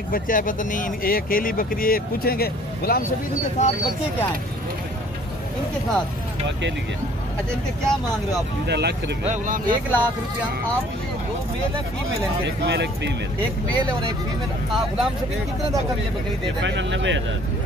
बच्चा है, पता नहीं ये अकेली बकरी है। पूछेंगे गुलाम शबीर इनके साथ बच्चे क्या हैं? इनके साथ अकेली है। अच्छा, इनके क्या मांग रहे हो आप? 1 लाख रुपया। 1 लाख रुपया। आप ये 2 मेल है फीमेल है? एक मेल एक फीमेल। एक मेल है और एक फीमेल। गुलाम शबीर कितने तक ये बकरी दे देंगे? फाइनल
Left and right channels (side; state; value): both; normal; correlation 0.55